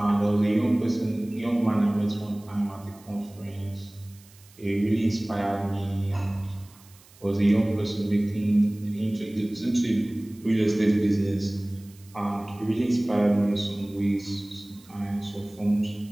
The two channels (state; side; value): noise; right; hiss, 26 dB below the sound